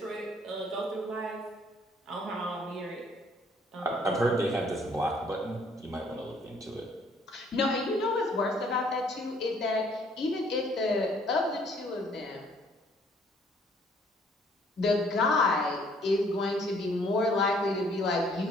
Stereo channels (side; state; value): both; normal; correlation 0.62